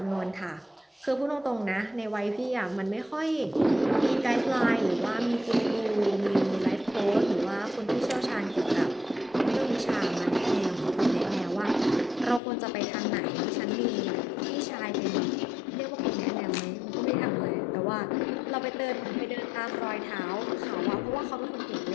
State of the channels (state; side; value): drops out; right; at 12.4 s